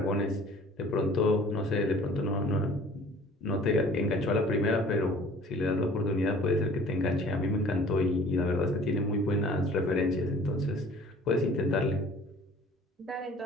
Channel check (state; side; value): normal; both; correlation 0.50